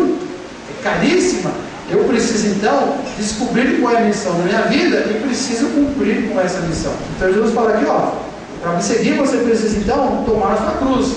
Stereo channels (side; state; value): both; identical; correlation 1.00